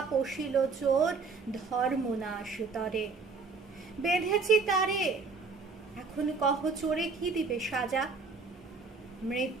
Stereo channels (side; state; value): left; quieter; 4.4 dB